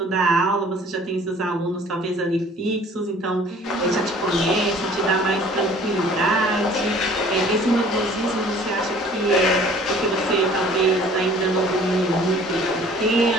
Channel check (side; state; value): both; normal; correlation 0.52